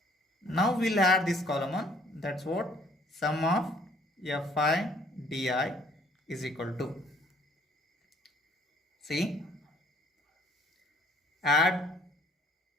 Now we'll add this column on. That's what sum of fi di is equal to. See, add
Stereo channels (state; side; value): normal; both; correlation 0.60